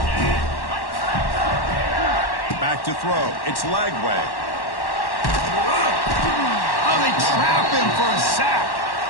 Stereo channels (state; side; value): late; right; 1.1 ms